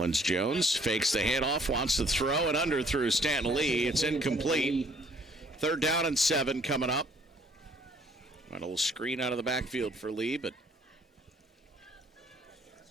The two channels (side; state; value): both; normal; correlation 0.61